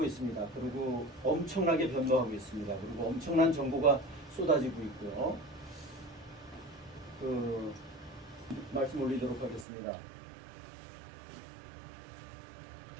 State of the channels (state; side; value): drops out; left; at 9.7 s